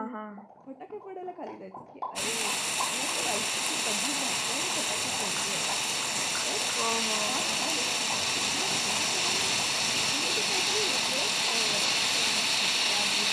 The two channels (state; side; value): identical; both; correlation 1.00